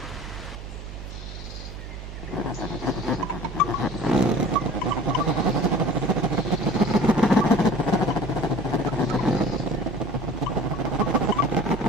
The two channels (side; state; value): right; noise; hum, 10 dB below the sound